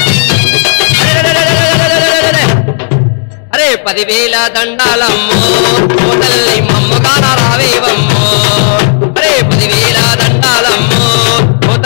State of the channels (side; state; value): right; silent; digital silence